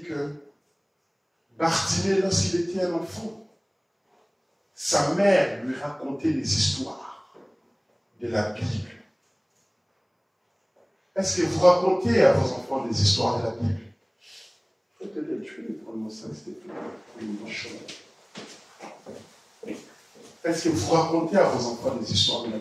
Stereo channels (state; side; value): identical; both; correlation 1.00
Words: que Bartimée, lorsqu'il était un enfant, sa mère lui racontait des histoires de la Bible. Est-ce que vous racontez à vos enfants des histoires de la Bible? Est-ce que vous racontez à vos enfants des histoires de la